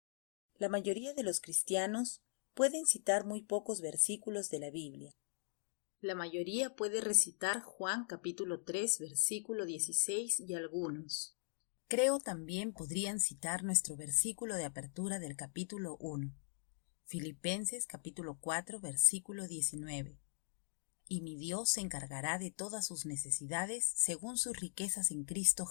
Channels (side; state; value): right; silent; digital silence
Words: La mayoría de los cristianos pueden citar muy pocos versículos de la Biblia. La mayoría puede recitar Juan capítulo 3, versículo 16 y algunos. Creo también podrían citar nuestro versículo de apertura del capítulo 1, Filipenses capítulo 4, versículo 19. Y mi Dios se encargará de todas sus necesidades según sus riquezas en Cristo